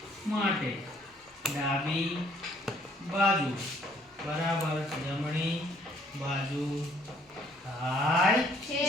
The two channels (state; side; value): normal; both; correlation 0.63